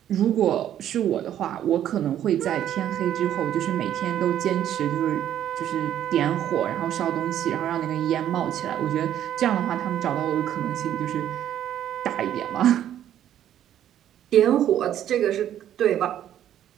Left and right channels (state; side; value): quieter; left; 11.0 dB